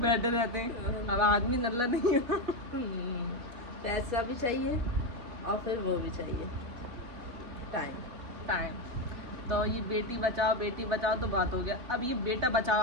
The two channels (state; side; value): late; left; 4.1 ms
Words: रहते हैं। अब आदमी नल्ला नहीं है। पैसा भी चाहिए और फिर वो भी चाहिए टाइम। तो ये बेटी बचाओ तो बात हो गया। अब ये बेटा बचाओ